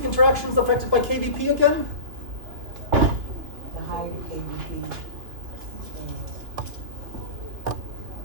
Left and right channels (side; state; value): left; late; 3.1 ms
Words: interactions affected by KVP again? The higher the KVP.